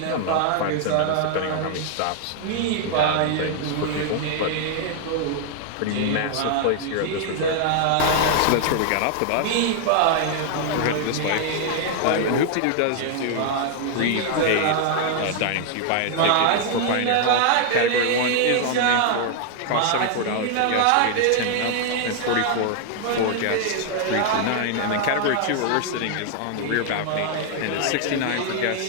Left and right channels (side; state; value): both; different; correlation 0.00